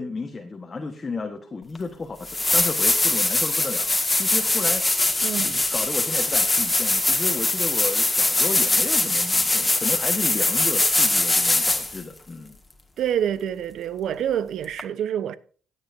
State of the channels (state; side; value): normal; both; correlation 0.92